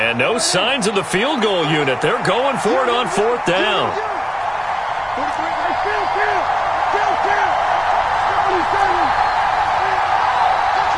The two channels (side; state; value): both; identical; correlation 1.00